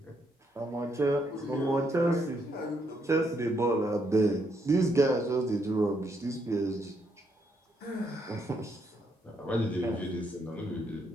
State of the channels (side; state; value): both; normal; correlation 0.75